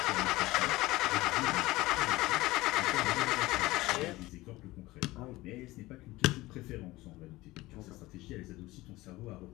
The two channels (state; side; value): quieter; right; 19.2 dB